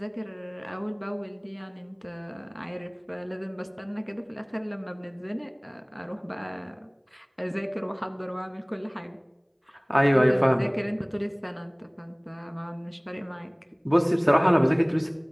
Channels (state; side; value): identical; both; correlation 1.00